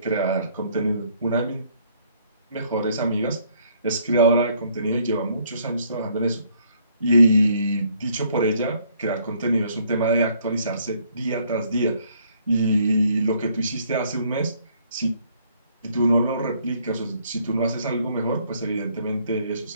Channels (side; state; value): both; inverted; correlation -0.65